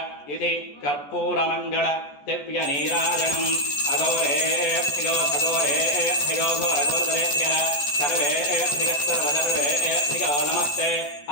ఇది కర్పూరమంగళ దివ్య నీరాజనం. అఘోరేభ్యో ఘోరేభ్యో ఘోరఘోరతరేభ్యః సర్వేభ్యః సర్వసర్వేభ్యో నమస్తే.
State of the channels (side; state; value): right; late; 14 ms